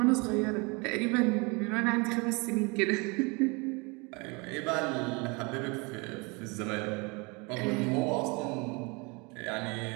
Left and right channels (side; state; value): left; quieter; 28.9 dB